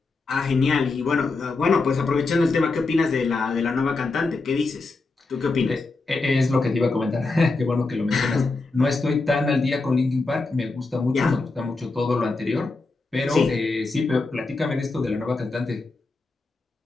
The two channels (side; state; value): right; quieter; 3.6 dB